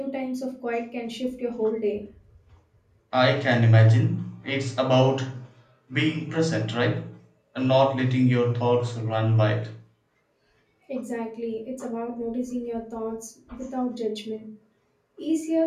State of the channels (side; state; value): both; identical; correlation 1.00